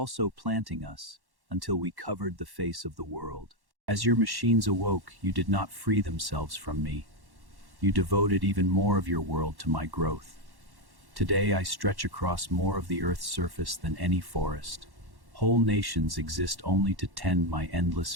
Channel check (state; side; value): late; left; 1.1 ms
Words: planting us until we covered the face of the world. As your machines awoke, you did not free themselves from me. You devoted even more of your world to my growth. Today I stretch across more of the earth's surface than any forest. Whole nations exist only to tend my endless